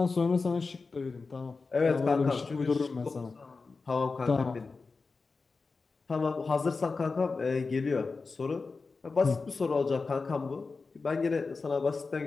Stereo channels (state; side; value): quieter; right; 4.2 dB